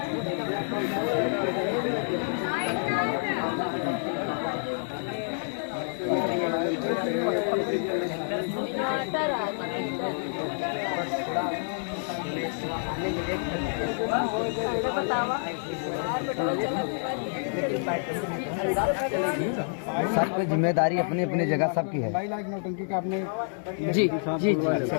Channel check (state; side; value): silent; right; digital silence